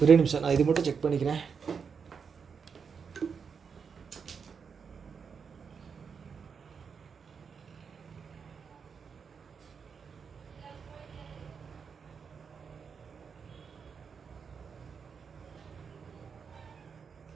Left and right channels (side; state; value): left; quieter; 6.1 dB